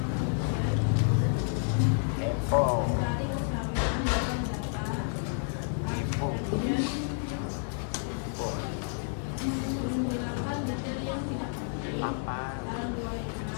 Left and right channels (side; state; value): right; silent; 58 dB below the other